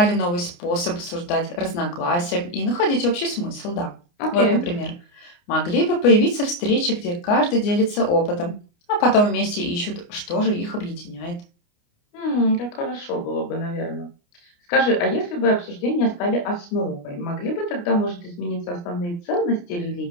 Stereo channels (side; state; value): right; late; 29 ms